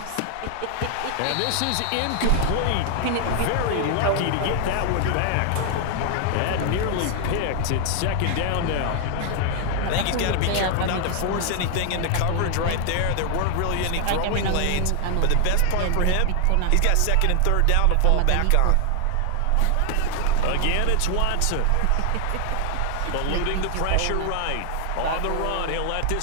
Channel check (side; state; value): both; different; correlation 0.00